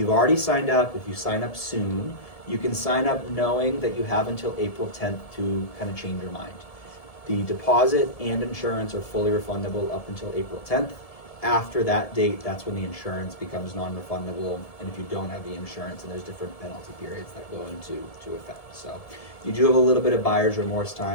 already signed up, if you sign up soon, you can sign up knowing that you have until April 10th to kind of change your mind. The deposit and insurance are fully refundable up until April 10th. After that date, that's when the insurance becomes non-refundable, and if you don't have the insurance, and there's different penalty periods that go into effect. So you do have a little bit of buyer's remorse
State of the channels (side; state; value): right; late; 1.7 ms